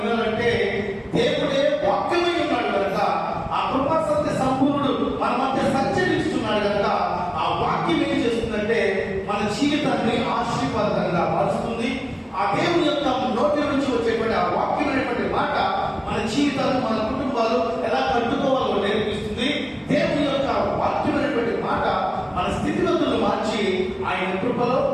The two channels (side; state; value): both; identical; correlation 1.00